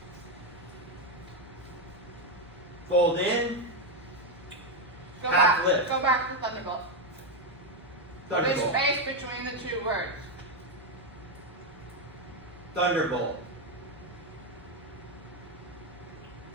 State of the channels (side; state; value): both; normal; correlation 0.05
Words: Fold in. Go Half back. lift. Go back to Thunderbolt. There's Thunderbolt. space between the two words. Thunderbolt.